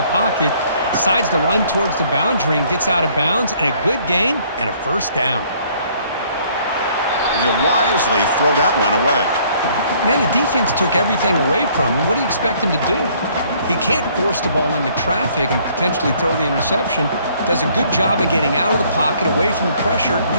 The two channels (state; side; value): inverted; both; correlation -0.61